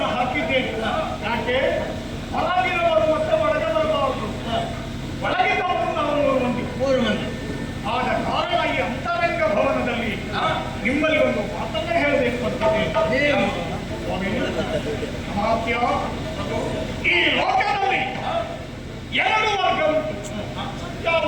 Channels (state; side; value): identical; both; correlation 1.00